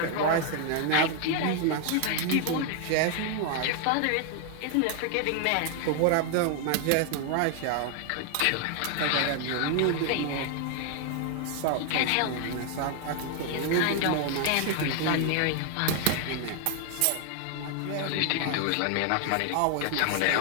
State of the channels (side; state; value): both; different; correlation 0.00